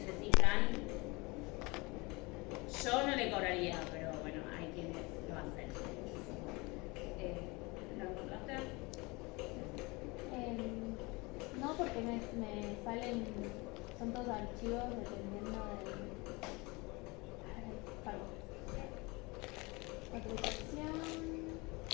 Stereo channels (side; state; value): right; quieter; 25.4 dB